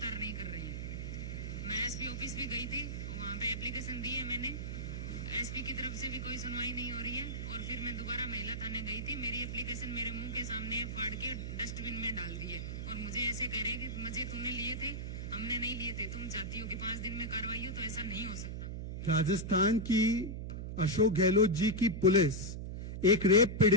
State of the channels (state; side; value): noise; right; hum, 5 dB below the sound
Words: नहीं कर रहे हैं। मैं एसपी ऑफिस भी गई थी, वहां पे एप्लीकेशन दी है मैंने, एसपी की तरफ से भी कोई सुनवाई नहीं हो रही है। और फिर मैं दोबारा महिला थाने गई थी, मेरी एप्लीकेशन मेरे मुंह के सामने फाड़ के डस्टबिन में डाल दी है और मुझे ऐसे कह रहे हैं कि मुझे तूने लिए थे, हमने नहीं लिए थे, तुम चाहती हो कि 5 दिन में कार्रवाई हो, तो ऐसा नहीं हो सकता। राजस्थान की अशोक गहलोत जी की पुलिस एक रेप